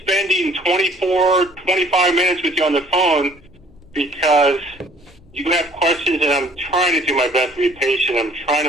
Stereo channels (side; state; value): left; noise; rumble, 28 dB below the sound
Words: spending 25 minutes with you on the phone, because you have questions, and I'm trying to do my best to be patient. I'm